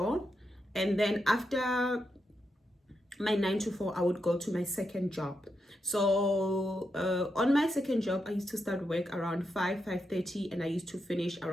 and then after my 9 to 4, I would go to my second job. So on my second job, I used to start work around 5:30, and I used to finish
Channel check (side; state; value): both; normal; correlation 0.85